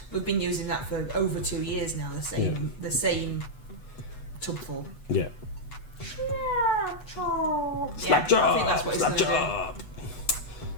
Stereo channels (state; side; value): late; right; 8.1 ms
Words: We've been using that for over 2 years now. The same tubful. Yeah. Slap job. I think that's what it's Slap gonna do. job.